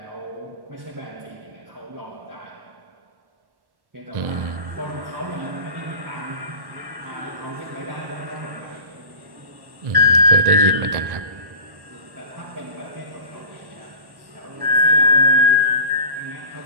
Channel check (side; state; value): left; late; 1.1 ms